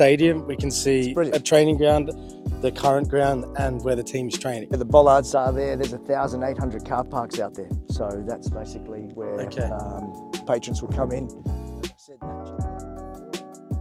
we can see brilliant. a training ground, the current ground, and where the team's training. The bollards are there. There's 1,800 car parks out there. So that's basically where Okay. patrons will come in.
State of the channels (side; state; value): both; identical; correlation 1.00